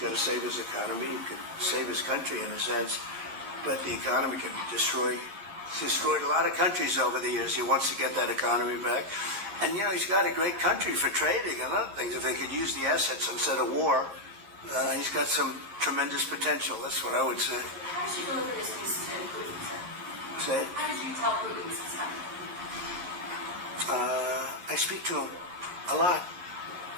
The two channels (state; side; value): late; left; 11 ms